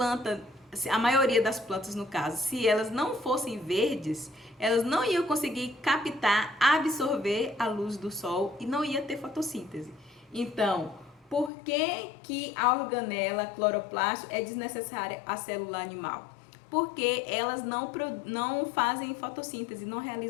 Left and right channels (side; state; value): right; drops out; at 11.5 s